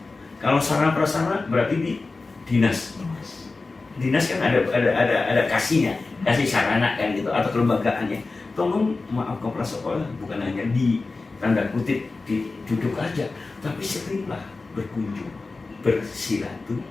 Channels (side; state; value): right; quieter; 3.7 dB